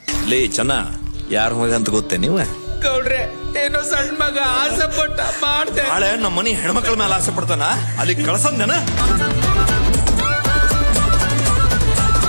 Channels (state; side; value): inverted; both; correlation -1.00